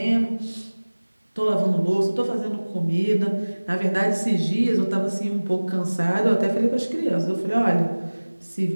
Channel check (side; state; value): both; inverted; correlation -1.00